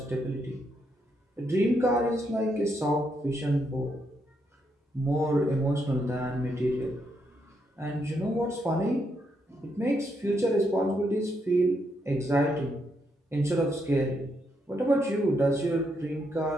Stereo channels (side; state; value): both; normal; correlation 0.78